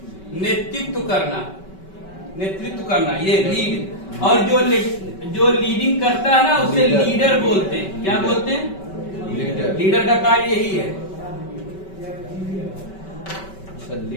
नेतृत्व करना, नेतृत्व करना, ये लीड। और जो लीडिंग करता है ना उसे लीडर बोलते हैं। क्या बोलते हैं? लीडर का कार्य यही है।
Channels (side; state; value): right; late; 5.2 ms